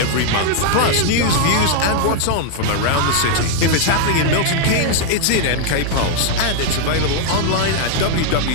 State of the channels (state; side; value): different; both; correlation 0.00